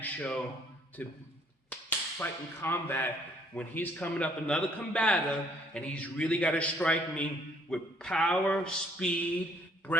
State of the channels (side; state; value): both; normal; correlation 0.63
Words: show to fight in combat when he's coming up another combatant and he's really got to strike me with power, speed,